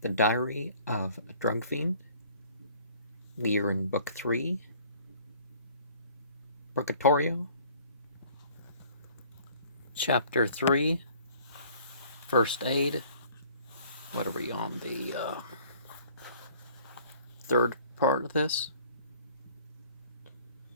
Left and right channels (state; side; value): inverted; both; correlation -0.53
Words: The Diary of a Drug Fiend. We are in Book 3, Purgatorio, Chapter 3, First Aid. What are we on, the third part of this?